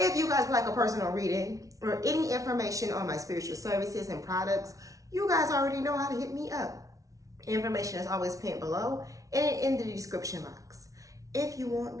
you guys would like a personal reading or any information on my spiritual services and products, you guys already know how to hit me up. Information is always pinned below and in the description box. If you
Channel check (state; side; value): late; left; 0.17 ms